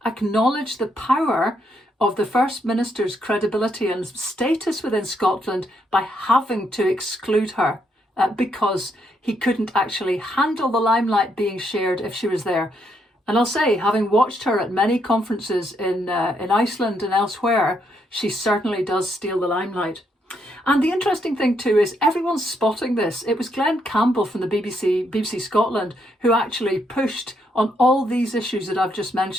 acknowledge the power of the First Minister's credibility and status within Scotland by having to exclude her because he couldn't actually handle the limelight being shared if she was there. And I'll say, having watched her at many conferences in Iceland and elsewhere, she certainly does steal the limelight. And the interesting thing too is everyone's spotting this. It was Glenn Campbell from the BBC Scotland, who actually pushed on all these issues that I've just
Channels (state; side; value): normal; both; correlation 0.76